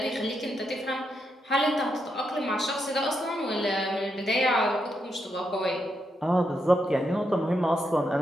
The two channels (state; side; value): normal; both; correlation 0.82